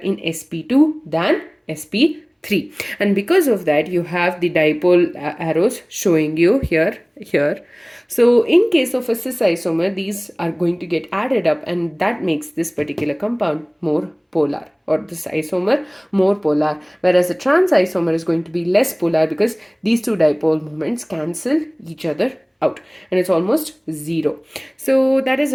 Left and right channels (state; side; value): identical; both; correlation 1.00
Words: sp2 than sp3. And because of that, you have the dipole arrows showing you here. So in case of a cis isomer, these are going to get added up, and that makes this particular compound more polar, or this isomer more polar, whereas the trans isomer is going to be less polar because these two dipole moments cancel each other out and it's almost zero. So that is